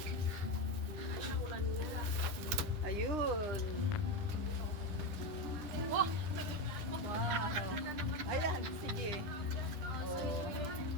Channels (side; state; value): left; late; 9.8 ms